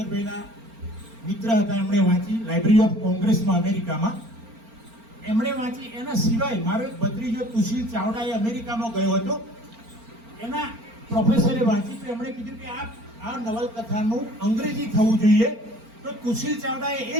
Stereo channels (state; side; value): late; left; 4.4 ms